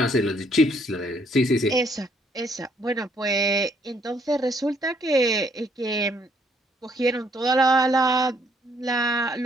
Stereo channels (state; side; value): normal; both; correlation 0.68